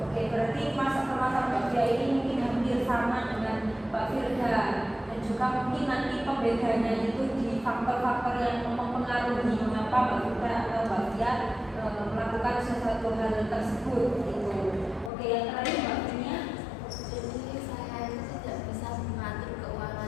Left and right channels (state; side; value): drops out; right; at 15.1 s